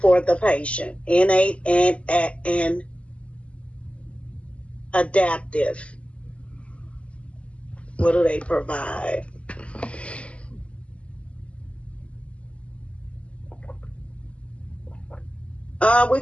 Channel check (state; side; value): late; right; 0.060 ms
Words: for the patient? Innate and adaptive. What do they provide? We